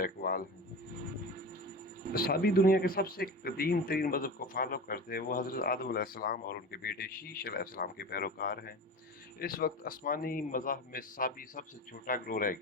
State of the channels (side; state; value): both; normal; correlation 0.30